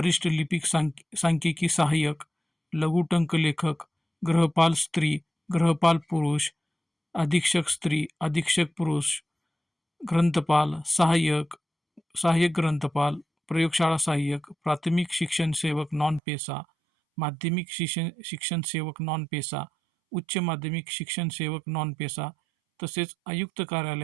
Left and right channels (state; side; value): drops out; left; at 16.2 s